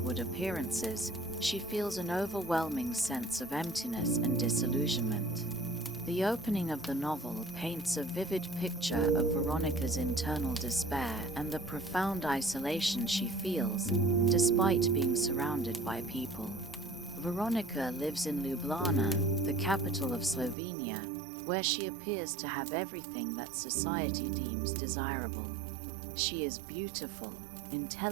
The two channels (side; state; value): left; drops out; at 20.6 s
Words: appearances, she feels an overwhelming sense of emptiness and disillusionment. The opening of the novel paints a vivid picture of Veronika's internal despair and the profound isolation she feels, despite being surrounded by people. Veronika lives in Ljubljana, the capital of Slovenia, where she appears to have everything that society deems desirable. She is beautiful,